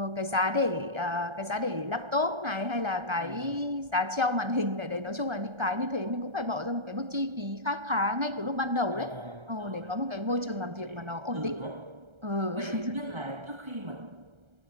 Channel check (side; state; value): left; late; 1.3 ms